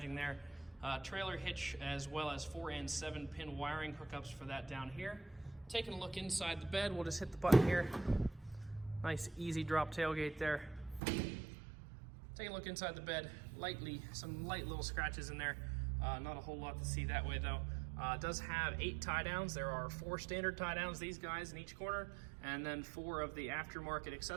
there. Trailer hitch, as well as 4 and 7 pin wiring hookups for that down here. Taking a look inside the bed, we'll just hit the button here. Nice easy drop tailgate there. Taking a look inside the bed, some light little scratches in there. Not a whole lot to see that way though. It does have 8 tie downs. There are 4 standard tie downs, these guys in each corner, and then 4 of the aftermarket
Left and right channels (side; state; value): left; drops out; at 11.0 s